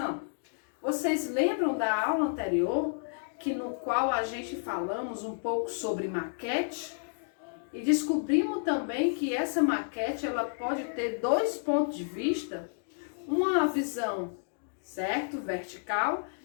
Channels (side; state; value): right; silent; digital silence